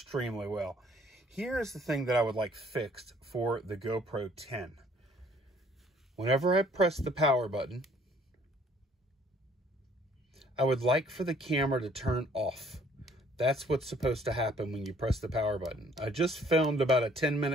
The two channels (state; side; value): normal; both; correlation 0.60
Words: well. Here is the thing that I would like fixed for the GoPro 10. Whenever I press the power button, I would like for the camera to turn off. That's what's supposed to happen when you press the power button. I just filmed about a